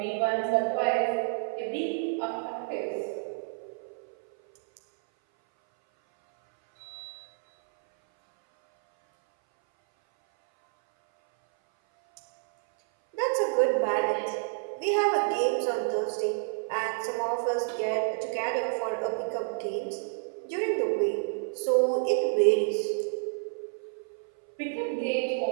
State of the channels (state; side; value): silent; left; 57 dB below the other